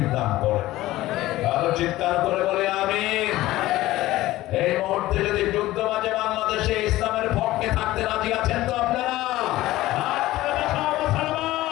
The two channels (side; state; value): right; quieter; 16.6 dB